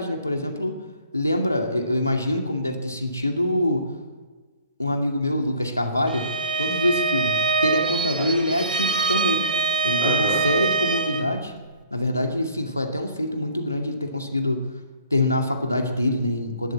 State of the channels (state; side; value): inverted; both; correlation -0.57